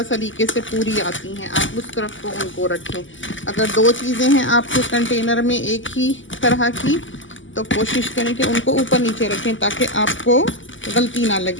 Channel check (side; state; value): right; late; 0.56 ms